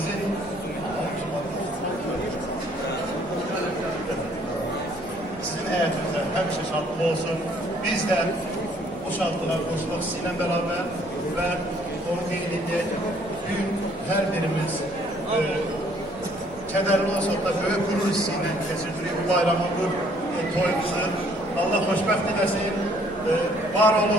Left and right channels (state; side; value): noise; left; rumble, 21 dB below the sound